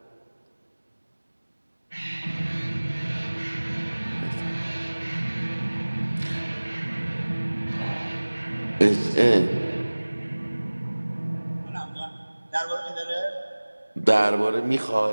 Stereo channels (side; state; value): both; inverted; correlation -1.00